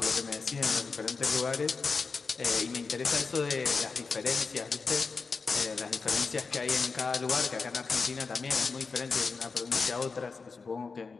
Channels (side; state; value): right; quieter; 4.6 dB